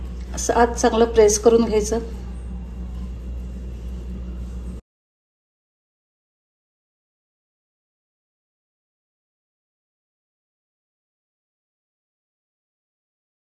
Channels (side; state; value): both; identical; correlation 1.00